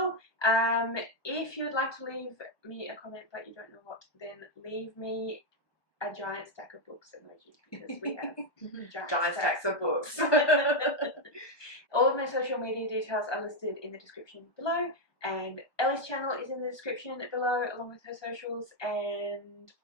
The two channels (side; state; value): right; late; 1.2 ms